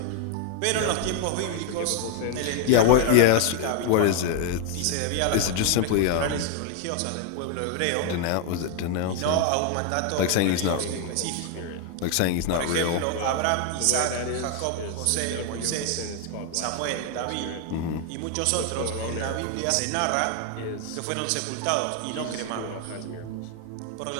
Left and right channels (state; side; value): different; both; correlation 0.00